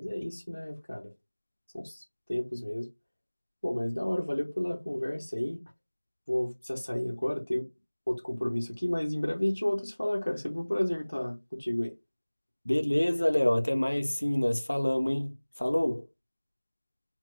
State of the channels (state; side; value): inverted; both; correlation -1.00